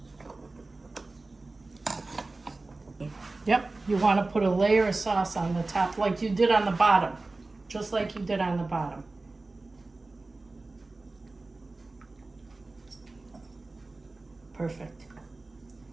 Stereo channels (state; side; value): quieter; left; 3.3 dB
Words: Yep, you want to put a layer of sauce on the top like you did on the bottom. Just like you did on the bottom. Perfect.